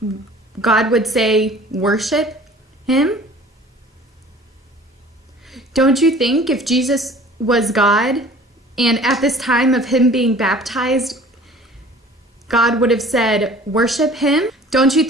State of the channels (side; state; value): both; normal; correlation 0.48